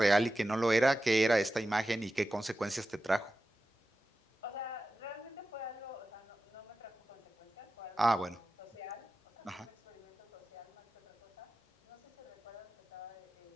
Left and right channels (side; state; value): both; normal; correlation 0.93